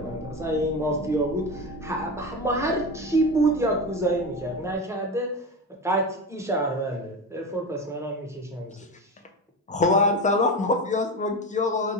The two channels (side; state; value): both; normal; correlation 0.22